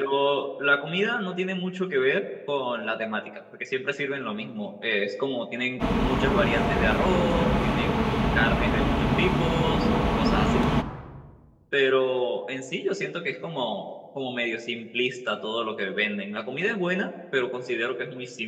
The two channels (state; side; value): identical; both; correlation 1.00